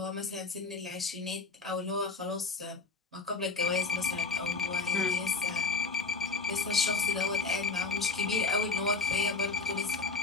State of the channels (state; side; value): quieter; right; 4.2 dB